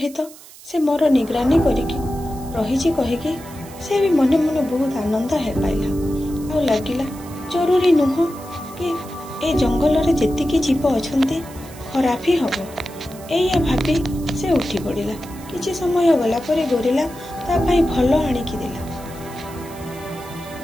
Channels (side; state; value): right; noise; hiss, 20 dB below the sound